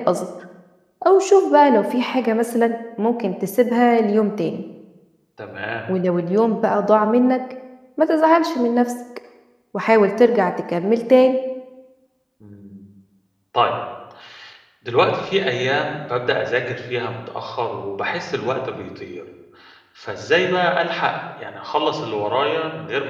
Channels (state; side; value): identical; both; correlation 1.00